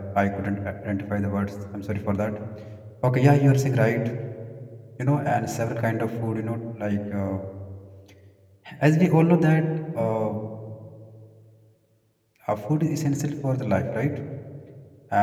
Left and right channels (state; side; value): identical; both; correlation 1.00